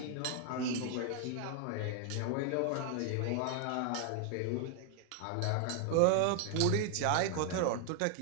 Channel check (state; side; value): different; both; correlation 0.00